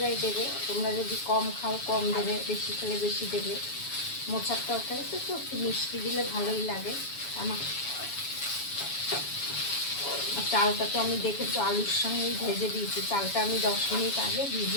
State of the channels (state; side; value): late; right; 7.1 ms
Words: দেবে, তোমরা যদি কম খাও কম দেবে, বেশি খেলে বেশি দেবে। মোচার তরকারিতে তো একটু মিষ্টি দিলে ভালোই লাগে। চালটা তো আমি দেখেছো আলুর সঙ্গেই ভেজে দিয়েছি। চালটা আমি 10 মিনিট আগে